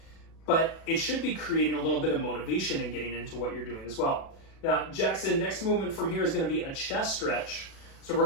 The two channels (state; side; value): late; right; 36 ms